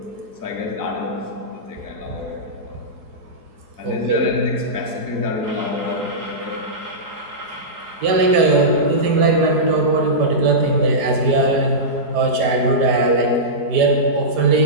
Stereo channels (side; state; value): left; late; 4.9 ms